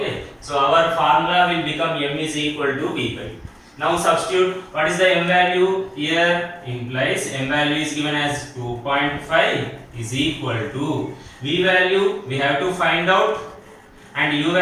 So our formula will become m is equal to v by u. Now substitute, what is the m value? Here implies m value is given as 2.5 is equal to v value we have to find out, and u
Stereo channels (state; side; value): identical; both; correlation 1.00